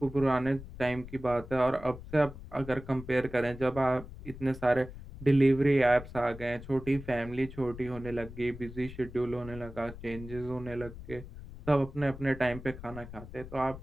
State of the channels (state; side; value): noise; left; rumble, 14 dB below the sound